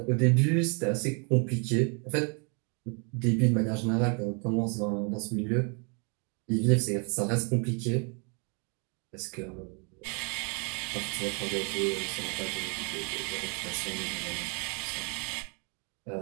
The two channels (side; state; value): left; quieter; 36.4 dB